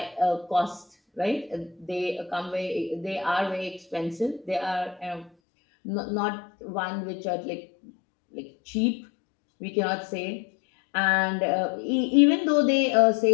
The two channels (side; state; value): right; drops out; at 5.3 s